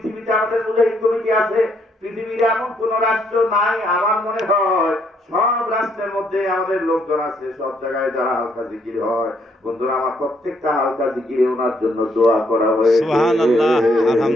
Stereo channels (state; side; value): normal; both; correlation 0.71